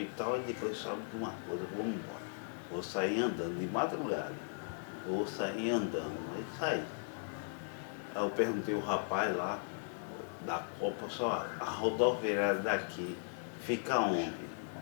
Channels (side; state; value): right; silent; digital silence